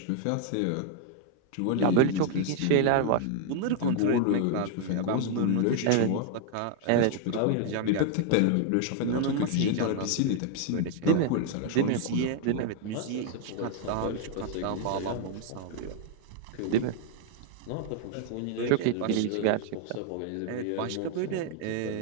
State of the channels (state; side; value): different; both; correlation 0.00